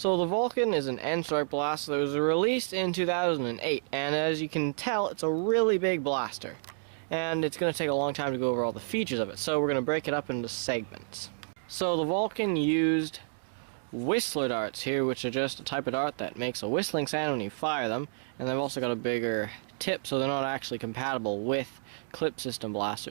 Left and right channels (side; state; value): left; silent; digital silence